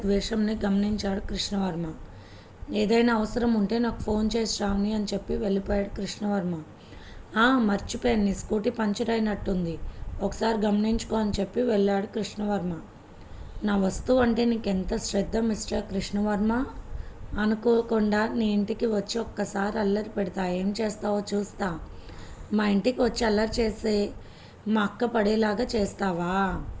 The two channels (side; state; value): both; identical; correlation 1.00